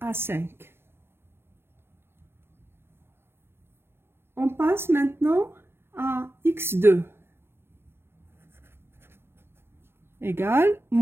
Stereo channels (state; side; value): late; left; 0.11 ms